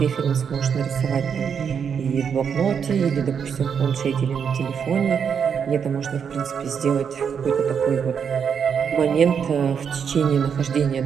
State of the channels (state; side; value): quieter; left; 7.1 dB